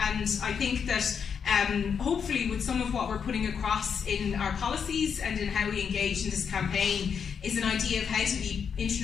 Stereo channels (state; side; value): quieter; right; 6.8 dB